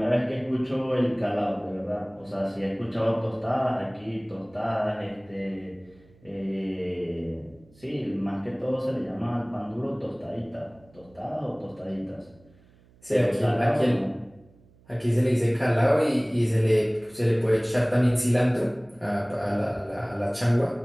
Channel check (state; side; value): noise; right; hum, 28 dB below the sound